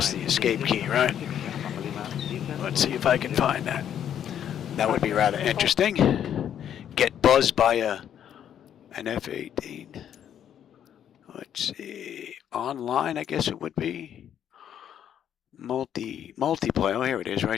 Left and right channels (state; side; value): quieter; right; 9.6 dB